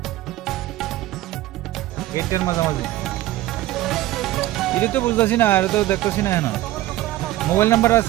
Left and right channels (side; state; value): left; quieter; 15.8 dB